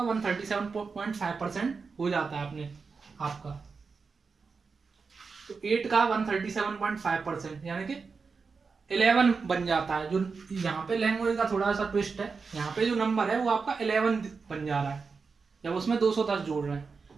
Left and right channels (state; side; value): quieter; left; 4.9 dB